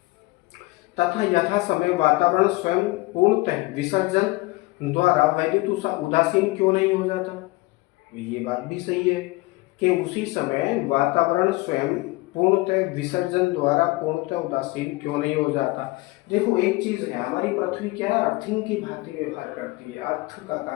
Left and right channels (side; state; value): right; quieter; 22.4 dB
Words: तथा यथा समय वातावरण स्वयं पूर्णतः विसर्जन द्वारा वैद्युत उदासीन क्यों नहीं हो जाता? ये बात भी सही है कि उसी समय वातावरण स्वयं पूर्णतः विसर्जन द्वारा पूर्णतः उदासीन क्यों नहीं हो जाता। देखो एक चीज है, हमारी पृथ्वी क्या है? अर्थिंग की भांति व्यवहार करती है, अर्थ का